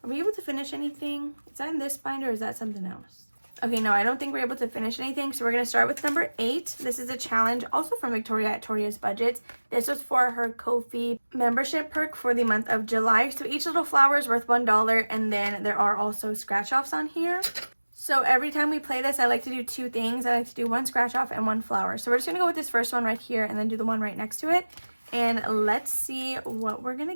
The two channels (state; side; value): inverted; both; correlation -1.00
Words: are we able to finish anything? Is that in this binder or is that something else? Okay, no, I don't think we're able to finish anything. So we're going to start with number 8. This is a challenge also from Victoria at Toria's Budgets. This was for her Ko-fi membership perk for the month of July. So each little flower is worth $1, and then there are also scratch offs on here. So every time we play this, I like to do 2 things. I like to do 1 scratch off and 1 flower. So we're just going to go with this first one right here and then do the one right next to it. And let's see what we're going to